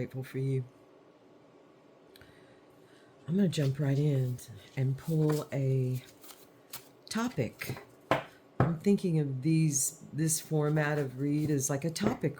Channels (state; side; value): identical; both; correlation 1.00